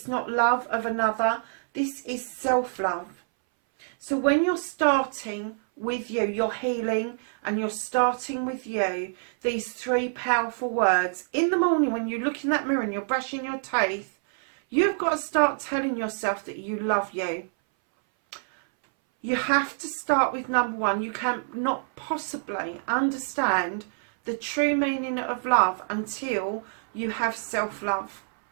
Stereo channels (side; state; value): left; silent; 60 dB below the other